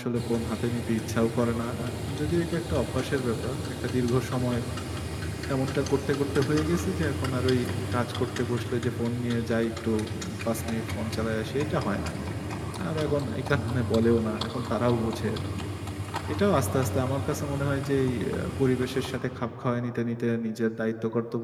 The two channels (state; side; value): identical; both; correlation 1.00